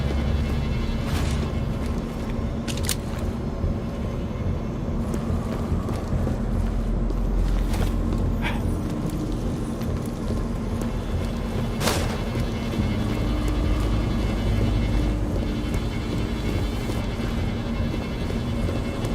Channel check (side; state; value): both; identical; correlation 1.00